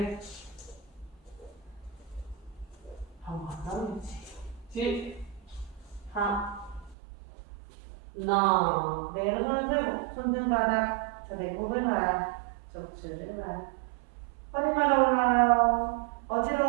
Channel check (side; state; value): left; drops out; at 7.0 s